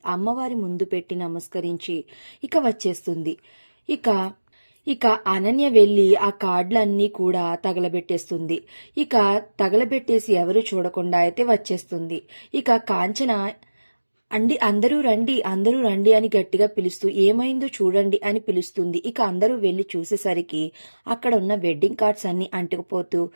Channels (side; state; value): both; inverted; correlation -1.00